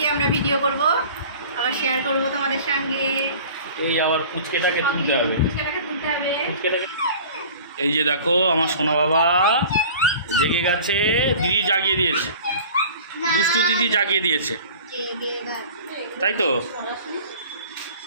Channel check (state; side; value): inverted; both; correlation -0.43